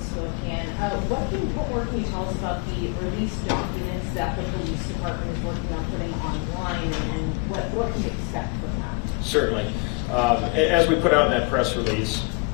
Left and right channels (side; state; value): right; quieter; 28.7 dB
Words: What more can you tell us about the release documents that the police department is working on putting online, and what can we expect from that? Certainly. As we put out in that press release,